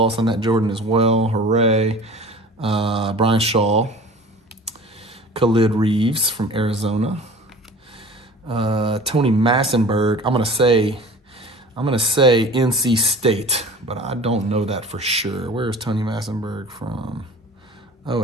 on that Jordan as well. Hooray. Brian Shaw. Khalid Reeves from Arizona. Tony Massenberg. I'm gonna say NC State, but I don't know that for sure. Where is Tony Massenberg from? Oh,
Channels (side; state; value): both; normal; correlation 0.42